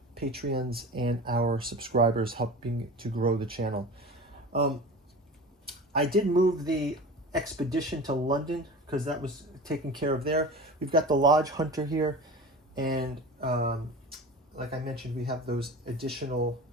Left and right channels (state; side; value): normal; both; correlation 0.34